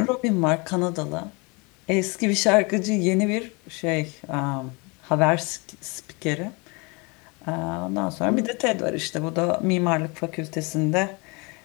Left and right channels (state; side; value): quieter; right; 29.1 dB